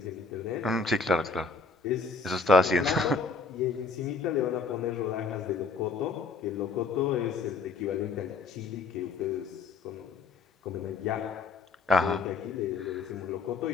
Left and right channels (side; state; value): right; quieter; 4.4 dB